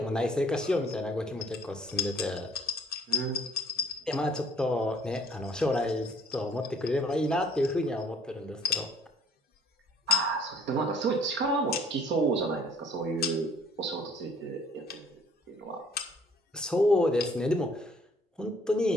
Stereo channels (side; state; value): both; normal; correlation 0.58